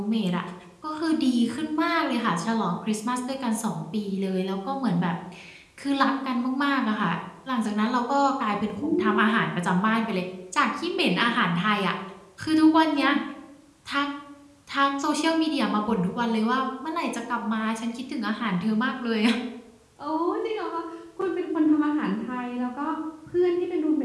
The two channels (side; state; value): both; identical; correlation 1.00